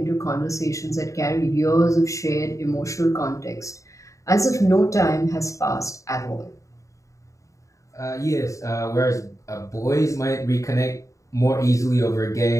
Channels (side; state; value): right; late; 0.15 ms